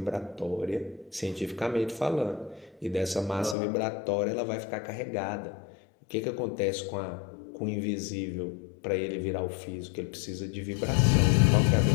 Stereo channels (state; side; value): drops out; right; at 3.6 s